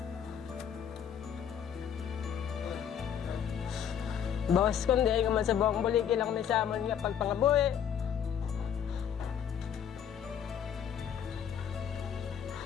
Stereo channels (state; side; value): quieter; right; 8.6 dB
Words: Boss, kundi ay nga man sa buong buliki lang ni Samon nga pagpangabuhi.